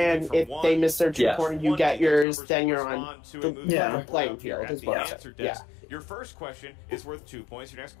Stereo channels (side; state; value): right; drops out; at 2.2 s